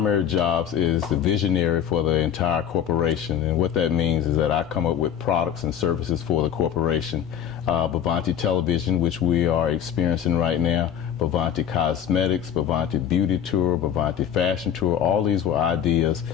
jobs is the visionary for the entire corporation, and what that means is that I come up with products and services for the corporation. Bovanti Television, which we are experiencing right now, Bovanti Cosmetics, Bovanti Beauty Tour, Bovanti Fashion Tour, all these were ideas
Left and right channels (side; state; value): right; quieter; 9.3 dB